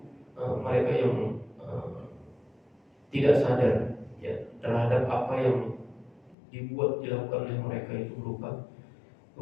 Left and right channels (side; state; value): right; drops out; at 6.4 s